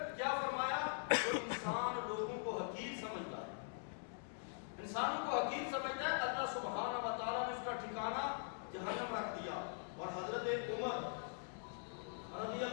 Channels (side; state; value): right; silent; digital silence